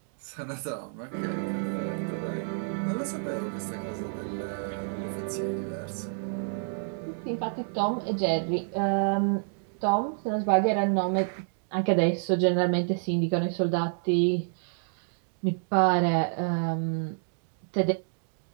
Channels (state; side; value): silent; left; digital silence